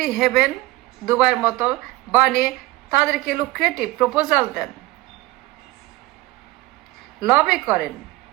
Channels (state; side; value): quieter; left; 19.0 dB